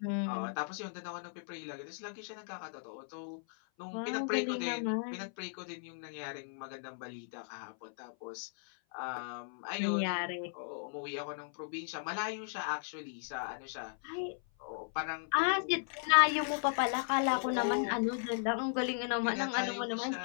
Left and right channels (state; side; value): silent; right; 54 dB below the other